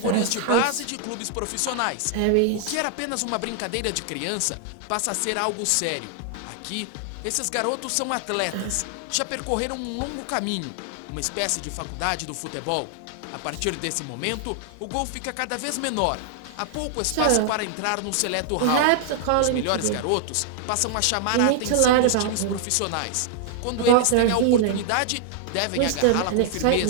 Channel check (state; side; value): different; both; correlation 0.00